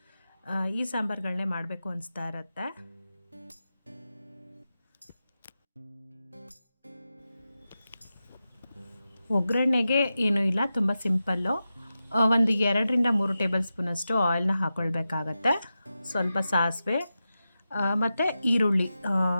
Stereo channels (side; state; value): both; inverted; correlation -0.92